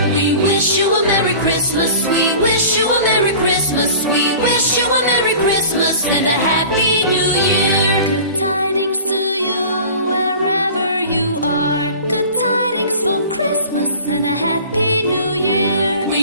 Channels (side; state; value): both; inverted; correlation -0.41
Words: We wish you a Merry Christmas. We wish you a Merry Christmas. We wish you a Merry Christmas and a Happy New Year. Good tidings to you wherever you are. Good tidings for Christmas and a Happy New Year.